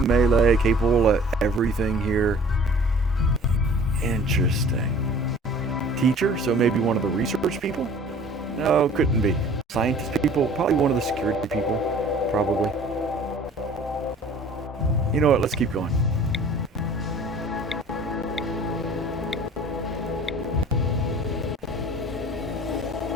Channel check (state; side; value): normal; both; correlation 0.48